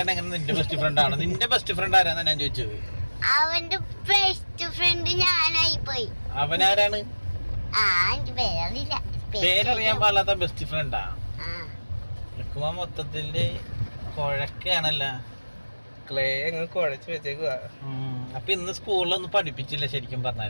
എങ്ങനെ നിന്റെ ബെസ്റ്റ് ഫ്രണ്ട് ആണ്? നിന്റെ ബെസ്റ്റ് ഫ്രണ്ട് ആരാന്നാ ഞാൻ ചോദിച്ചത്. അവന്റെ ബെസ്റ്റ് ഫ്രണ്ട് ഞാനായി പോയി. അവനാരാണ്? എനിക്ക് പേരറിയില്ല. പേരറിയാൻ പാടില്ലാത്ത ബെസ്റ്റ് ഫ്രണ്ടാ? മൊത്തത്തില് കുഴക്കാണല്ല. ക്ലേ അങ്ങ് കുഴച്ച് വെച്ചേക്കുവാ. അപ്പൊ ഇന്ന് സ്കൂളിലൊന്നും പഠിപ്പിച്ചില്ല ശരിക്കും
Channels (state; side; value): inverted; both; correlation -1.00